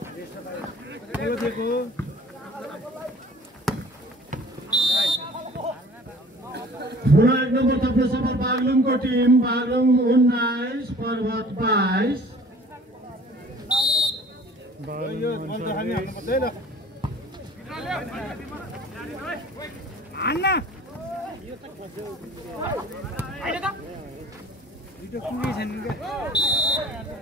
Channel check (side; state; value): both; normal; correlation 0.48